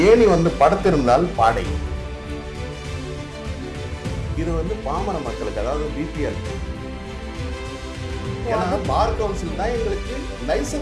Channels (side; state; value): both; identical; correlation 1.00